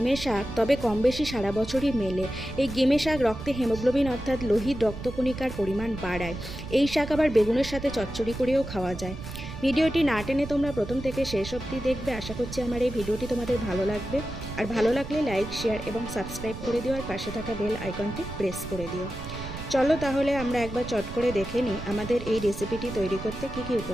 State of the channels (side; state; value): right; noise; rumble, 10 dB below the sound